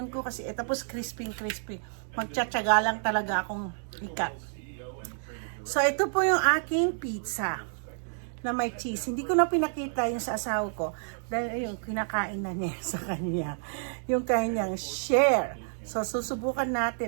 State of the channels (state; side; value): silent; left; digital silence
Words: ko kasi, tapos crispy. Magtsatsaga lang talaga akong ikat. So, ito po yung aking pizza na may cheese. Hindi ko na pinakita yung sa asawa ko dahil yung kinakain na niya sa kanya. Yung kanyang share. So, susubukan